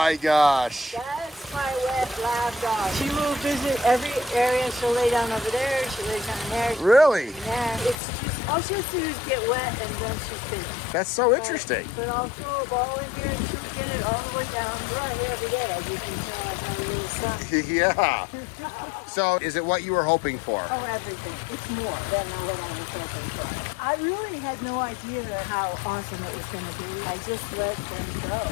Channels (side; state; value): right; drops out; at 8.0 s